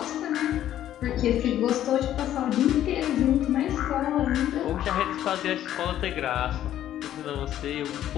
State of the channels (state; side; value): quieter; right; 11.9 dB